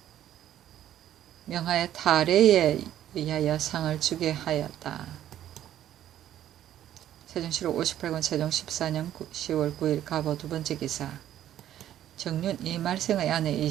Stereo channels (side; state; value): left; quieter; 11.7 dB